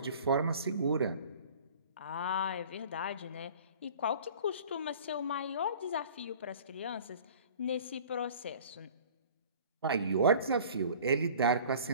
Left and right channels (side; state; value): both; inverted; correlation -0.46